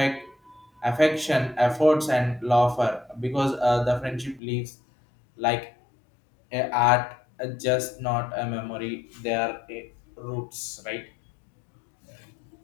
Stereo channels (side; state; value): right; drops out; at 4.4 s